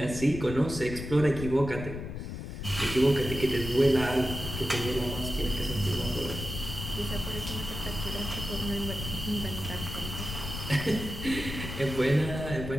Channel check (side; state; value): left; noise; rumble, 7 dB below the sound